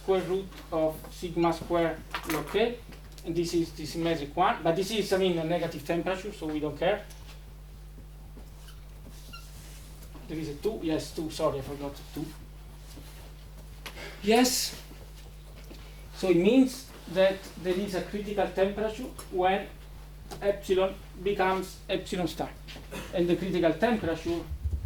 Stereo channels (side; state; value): both; identical; correlation 1.00